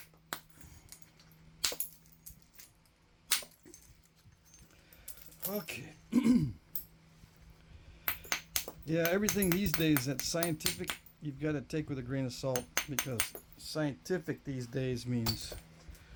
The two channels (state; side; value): identical; both; correlation 1.00